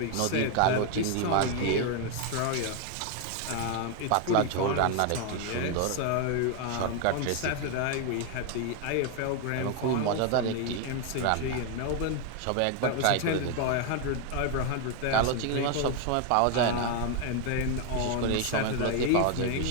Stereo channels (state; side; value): different; both; correlation 0.01